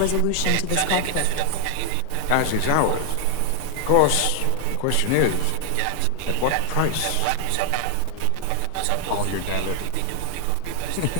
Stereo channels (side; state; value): both; different; correlation 0.00